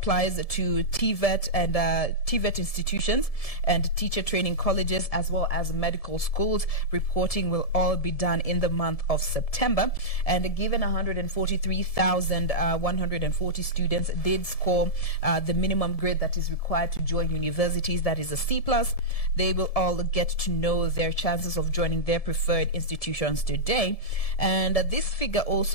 to TVET and TVET institutions and teacher training colleges, as well as medical schools. Reporting will all be done in the month of September. And given 143,140 students did score the minimum grade that is required to join universities, that is a C+, they will all get to know their chances of joining their preferred institutions today. And this figure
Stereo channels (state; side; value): late; right; 1.7 ms